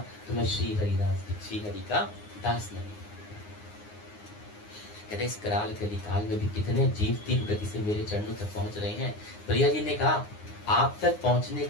तो मैं श्री हरि का दास नहीं। कहते इस कराल कलिकाल में भी कितने जीव तीव्र गति से मेरे चरणों तक पहुंच रहे हैं। प्रिया जी ने कहा आप तक पहुंचने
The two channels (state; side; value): late; right; 9.6 ms